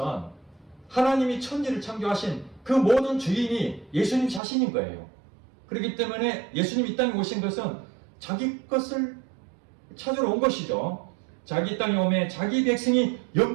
하나님이 천지를 창조하신 그 모든 주인이 예수님 자신인 거예요. 그렇기 때문에 예수님이 이 땅에 오신 것은 자기 것을 찾으러 온 것이죠. 자기 땅에 오매 자기 백성이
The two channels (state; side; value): drops out; left; at 4.4 s